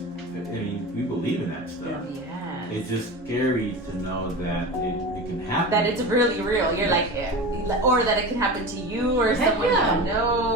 believe in that stuff. Yeah. It's just scary to know that it can happen. That it's really real. You're like, or that it can happen to you or Heck someone yeah. you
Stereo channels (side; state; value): both; normal; correlation 0.29